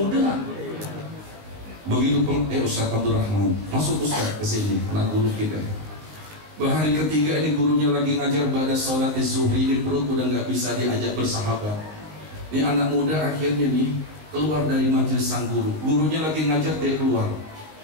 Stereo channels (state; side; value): late; left; 19 ms